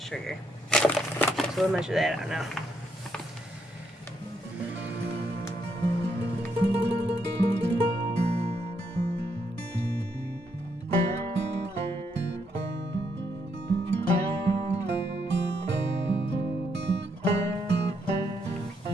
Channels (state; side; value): normal; both; correlation 0.76